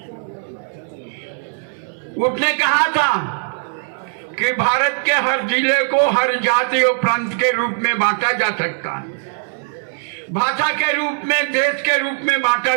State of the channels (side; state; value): left; silent; 63 dB below the other